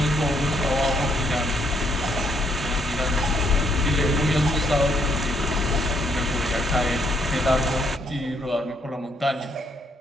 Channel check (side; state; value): both; normal; correlation 0.72